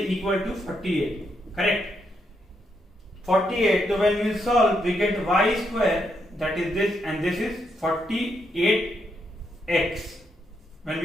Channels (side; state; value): both; normal; correlation 0.79